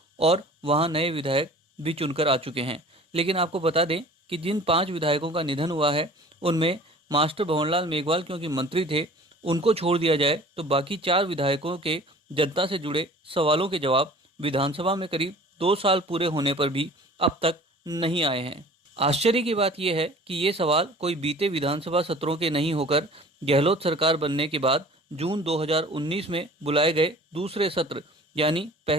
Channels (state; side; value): normal; both; correlation 0.46